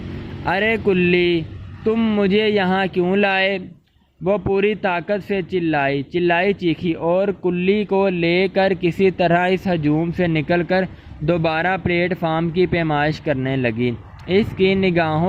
ارے کلی، تم مجھے یہاں کیوں لائے؟ وہ پوری طاقت سے چلائی چیخی اور کلی کو لے کر کسی طرح اس ہجوم سے نکل کر دوبارہ پلیٹ فارم کی پیمائش کرنے لگی۔ اس کی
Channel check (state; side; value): identical; both; correlation 1.00